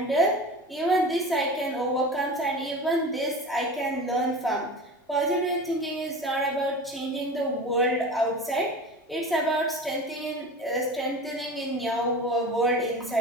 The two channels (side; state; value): both; normal; correlation 0.33